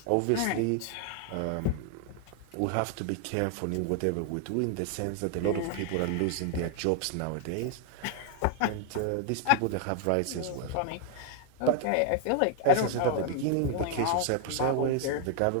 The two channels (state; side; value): different; both; correlation 0.00